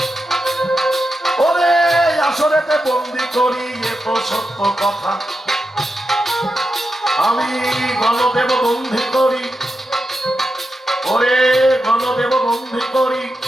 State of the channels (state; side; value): normal; both; correlation 0.88